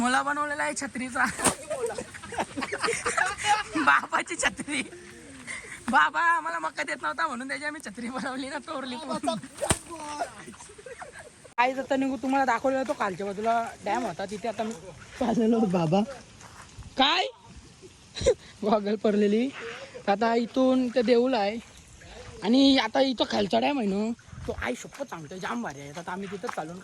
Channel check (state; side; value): identical; both; correlation 1.00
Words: बनवलेला आहे छत्रीचा. बाबाची छत्री. बाबा आम्हाला मका देत नव्हता म्हणून त्याची आम्ही छत्री बनवली ना तोरली. काय जाता निघू तुम्हाला दाखवलेला तो कालच्या बाजूला डॅम होता तिथे आता मी चाललेलो बाबा. काय गॉगल पडलेली. आता इथून ते देऊळ आहे आणि आता इथं खालचा डॅम आहे ना तो आई शपथ सांगतोय जाम भारी आहे. आता आम्ही तिथं चालून